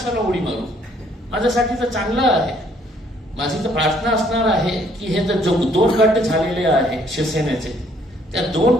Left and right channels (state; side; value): normal; both; correlation 0.64